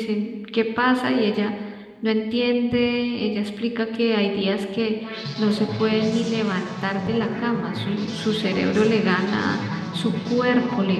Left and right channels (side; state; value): both; identical; correlation 1.00